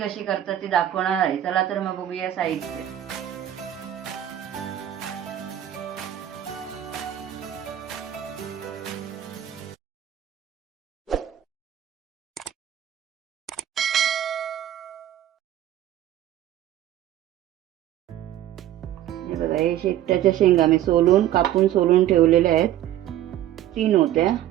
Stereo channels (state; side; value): quieter; left; 12.1 dB